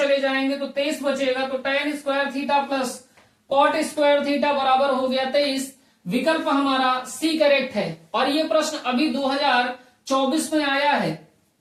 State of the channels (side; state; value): both; identical; correlation 1.00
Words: जाएंगे तो 23 बचेगा। तो tan square theta plus cot square theta बराबर हो गया 23। विकल्प हमारा सी करेक्ट है। और ये प्रश्न अभी 2024 में आया है।